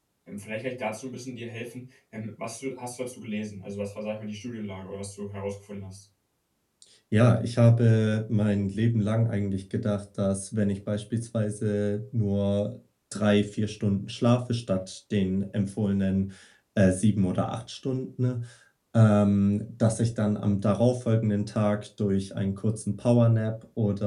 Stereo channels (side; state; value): both; identical; correlation 1.00